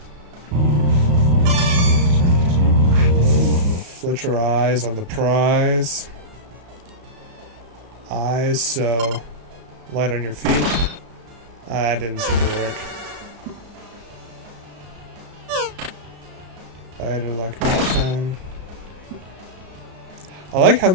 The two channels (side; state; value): left; late; 34 ms